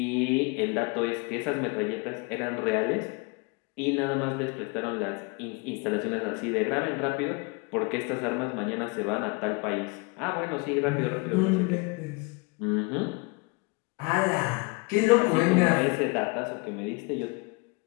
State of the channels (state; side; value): quieter; right; 29.7 dB